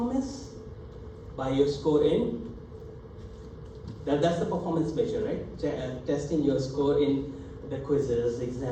By your score in, that's the performance measure, right? Testing your score in the quizzes,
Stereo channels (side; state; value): both; identical; correlation 1.00